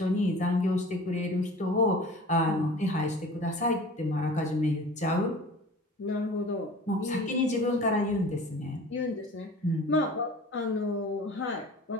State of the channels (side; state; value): both; normal; correlation 0.41